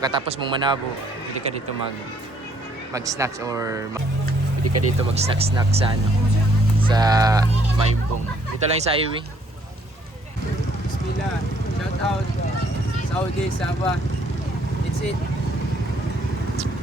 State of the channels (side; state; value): both; normal; correlation 0.66